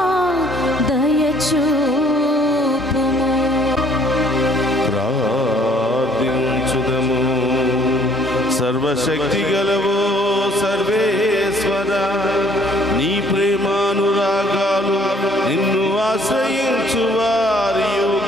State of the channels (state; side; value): noise; right; rumble, 29 dB below the sound